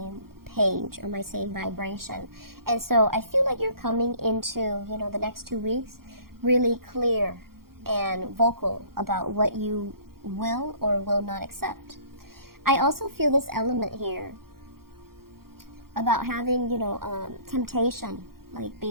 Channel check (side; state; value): left; late; 0.93 ms